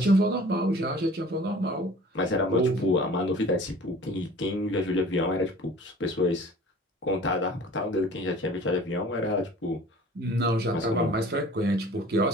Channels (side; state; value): both; normal; correlation 0.46